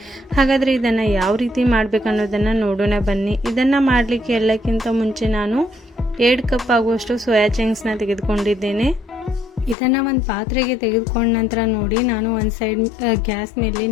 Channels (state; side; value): drops out; right; at 9.8 s